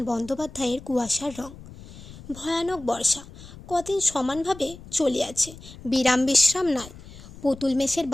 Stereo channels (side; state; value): left; noise; rumble, 17 dB below the sound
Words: বন্দ্যোপাধ্যায়ের কুয়াশার রং। ভয়ানক বর্ষা কদিন সমানভাবে চলিয়াছে, বিরাম বিশ্রাম নাই। পুতুল মেসের